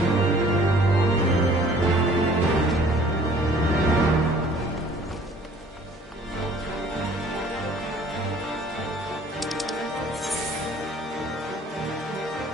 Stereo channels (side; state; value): both; normal; correlation 0.54